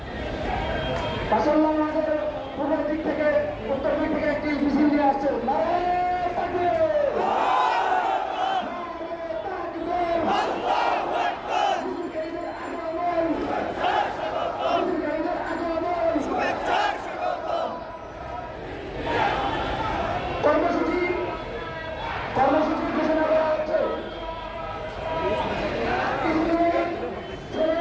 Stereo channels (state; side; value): identical; both; correlation 1.00